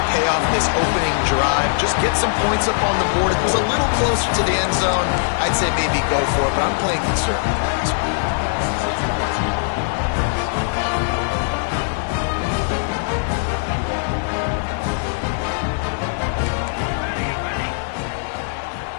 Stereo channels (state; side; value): silent; right; 60 dB below the other